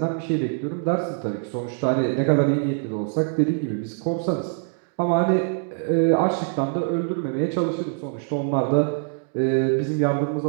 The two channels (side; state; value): left; silent; 63 dB below the other